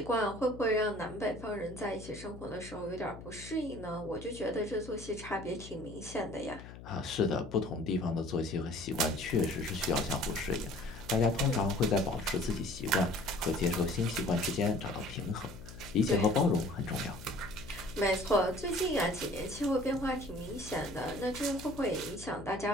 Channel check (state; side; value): noise; left; hum, 14 dB below the sound